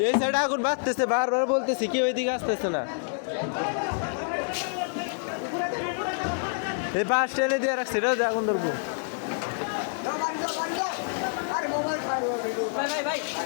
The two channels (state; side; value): silent; right; digital silence